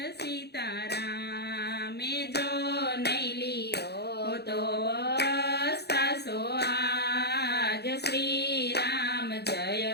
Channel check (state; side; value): late; right; 0.48 ms